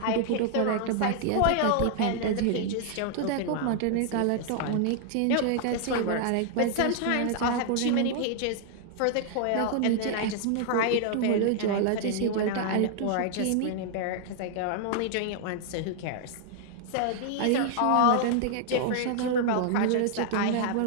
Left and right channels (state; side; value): different; both; correlation 0.00